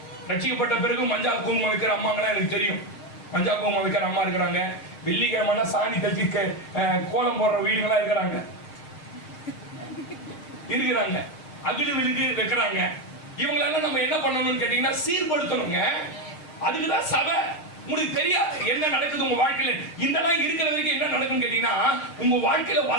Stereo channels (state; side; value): late; right; 6.5 ms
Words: ரட்சிக்கப்பட்ட பிறகு மஞ்சா குங்குமம் வைக்கிற அம்மாங்களாம் எனக்கு தெரியும். மஞ்சா குங்குமம் வைக்கிற அம்மா இருக்கிறாங்க. வெள்ளிக்கிழமை சாணி கட்டி கோலம் போடுற வீடுகளா இருக்கிறாங்க. அகில விழுக்கு வைக்கிறாங்க. இவங்களெல்லாம் நம்ம என்ன பண்ணணும்னு கேட்டீங்கன்னா, சீர்படுத்தணுங்க. அதுக்குதான் சபை. உங்களுக்கு தெரியாது என்ன நடக்குது உங்க வாழ்க்கையில. இதெல்லாம் இருக்கிற வரைக்கும் என்ன நடக்கும்னு கேட்டீங்கன்னா, உங்க வாழ்க்கையில